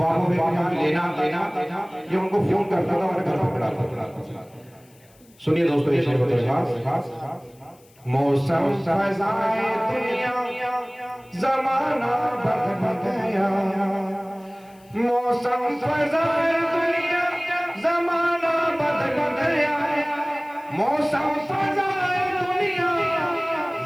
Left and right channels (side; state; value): left; noise; hiss, 30 dB below the sound